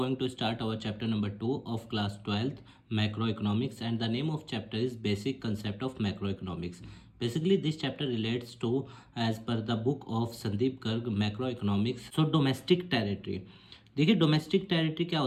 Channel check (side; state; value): both; identical; correlation 1.00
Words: to start our chapter number 2 of class 12th macroeconomics, and the name of chapter is basic concept of macroeconomics. Basically this chapter relates to, as per the book of Sandeep Garg, macroeconomics. So domestic territory. देखिए domestic territory क्या